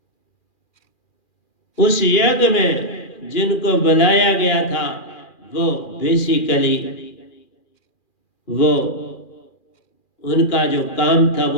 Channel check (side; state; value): right; late; 2.4 ms